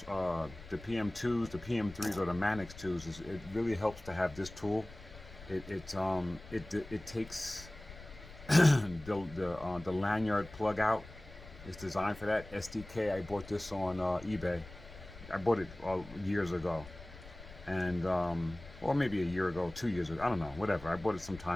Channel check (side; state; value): left; noise; rumble, 17 dB below the sound